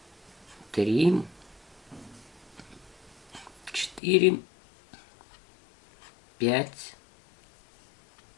3, 4, 5,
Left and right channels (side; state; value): right; drops out; at 4.0 s